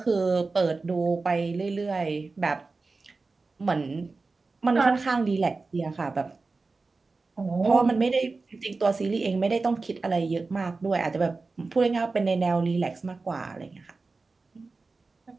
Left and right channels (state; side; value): quieter; left; 3.9 dB